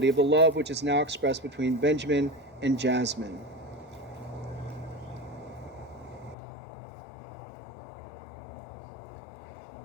of the love which is now expressed between Benjamin and Jasmine.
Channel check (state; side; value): drops out; right; at 6.4 s